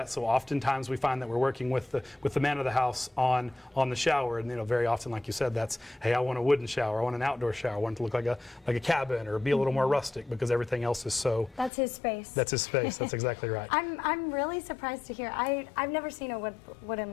So oftentimes we find that we're working with the man of the house on the shower, and very often, like you said, that's, hey, I want a wooden shower, I want an outdoor shower, I want it to look like a cabin or be a little more rustic because everything else is so. That's his space. That's his space. That's exactly right. I'm really surprised to hear. I've never seen a wooden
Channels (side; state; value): right; drops out; at 11.7 s